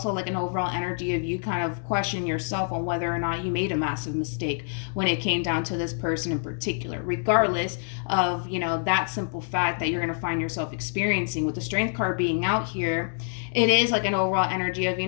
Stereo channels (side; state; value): right; silent; 61 dB below the other